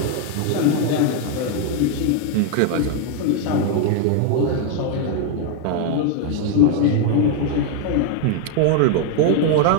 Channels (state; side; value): different; both; correlation 0.01